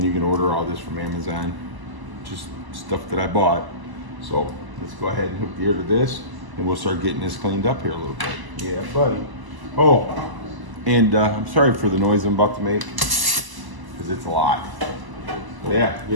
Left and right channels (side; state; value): left; late; 1.0 ms